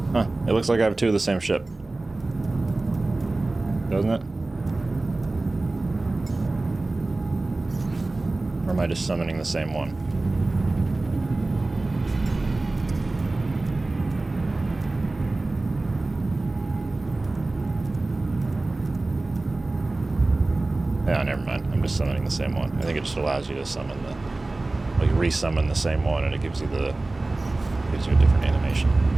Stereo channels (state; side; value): quieter; left; 3.1 dB